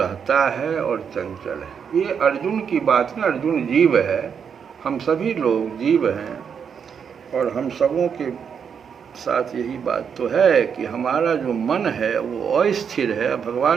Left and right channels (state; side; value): quieter; left; 7.1 dB